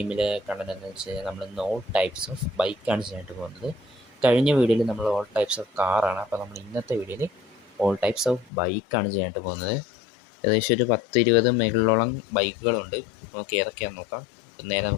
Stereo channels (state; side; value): drops out; right; at 8.5 s